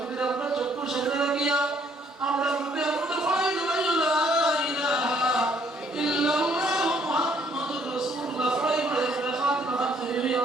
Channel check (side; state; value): both; normal; correlation 0.65